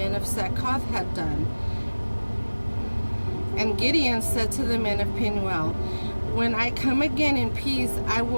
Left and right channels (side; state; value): both; inverted; correlation -1.00